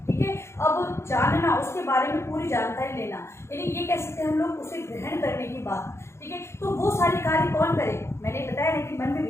ठीक है, अब जानना, उसके बारे में पूरी जानकारी लेना, यानी ये कह सकते हैं हम लोग उसे ग्रहण करने की बात। ठीक है, तो वो सारे कार्य कौन करे? मैंने बताया ना कि मन में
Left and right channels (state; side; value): late; right; 0.13 ms